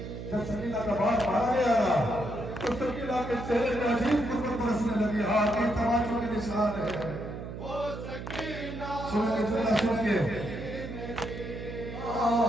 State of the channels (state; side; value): noise; right; hum, 9 dB below the sound